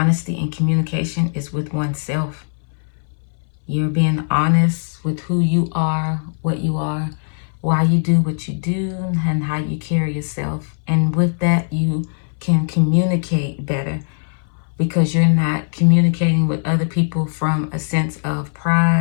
and communication is with oneself. You're being honest with who you are, what you are, why you do what you do, and how you carry yourself. And with that, you can communicate better because you're not communicating with other people from a sense of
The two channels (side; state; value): right; silent; 62 dB below the other